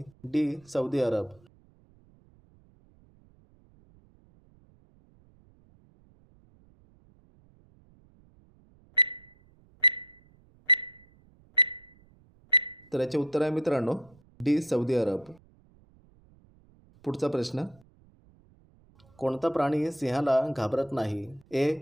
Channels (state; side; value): noise; right; rumble, 29 dB below the sound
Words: D. Saudi Arab. तर याचे उत्तर आहे मित्रांनो डी सौदी अरब. पुढचा प्रश्न, कोणता प्राणी सिंहाला घाबरत नाही?